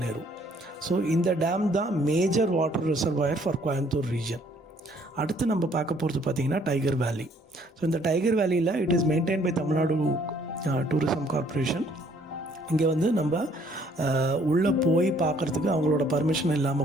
Nehru. So இந்த டேம் தான் major water reservoir for Coimbatore region. அடுத்து நம்ம பார்க்க போகிறது பார்த்திங்கன்னா டைகர் வேலி. ஸோ இந்த டைகர் வேலியில் it is maintain by Tamil Nadu tourism corporation. இங்கே வந்து நம்ம உள்ளே போய் பார்க்குறதுக்கு அவங்களோட பர்மிஷன்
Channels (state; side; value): normal; both; correlation 0.62